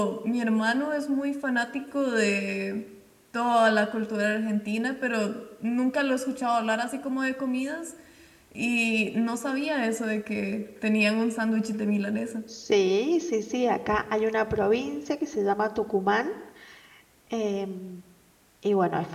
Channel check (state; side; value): identical; both; correlation 1.00